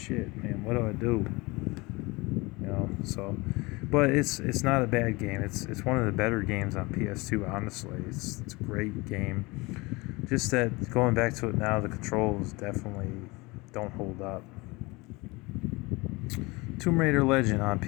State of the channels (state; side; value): quieter; right; 24.2 dB